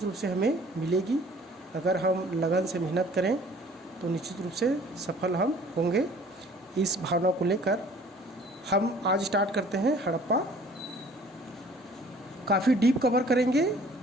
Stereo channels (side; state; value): both; normal; correlation 0.53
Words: रूप से हमें मिलेगी। अगर हम लगन से मेहनत करें तो निश्चित रूप से सफल हम होंगे। इस भावना को लेकर हम आज स्टार्ट करते हैं हड़प्पा। काफ़ी डीप कवर करेंगे